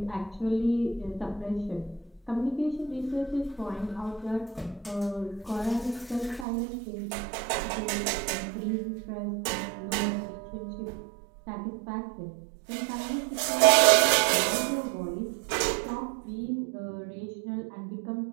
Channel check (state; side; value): drops out; left; at 6.5 s